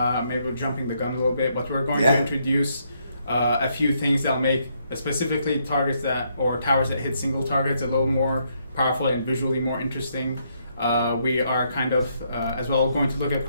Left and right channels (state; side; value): inverted; both; correlation -0.74